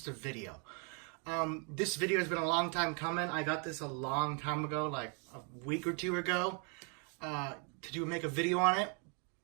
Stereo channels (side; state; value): left; quieter; 37.4 dB